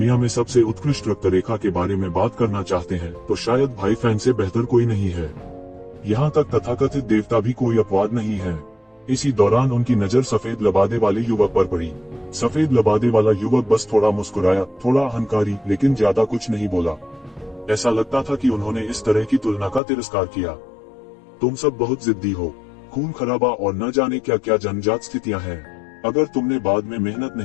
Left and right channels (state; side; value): drops out; right; at 19.8 s